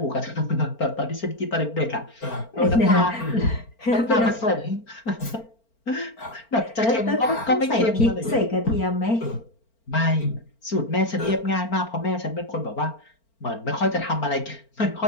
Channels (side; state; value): right; late; 4.4 ms